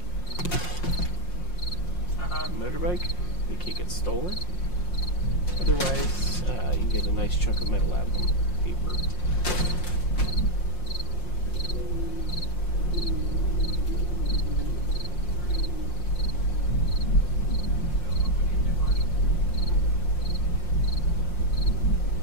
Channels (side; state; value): right; late; 5.6 ms